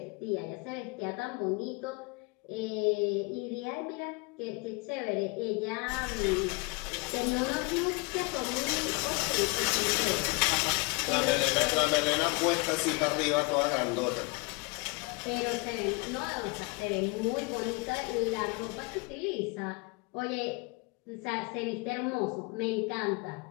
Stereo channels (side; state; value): right; quieter; 28.8 dB